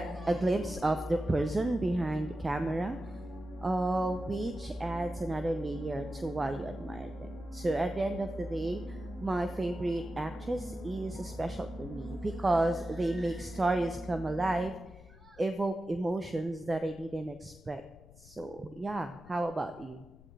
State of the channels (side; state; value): left; noise; rumble, 22 dB below the sound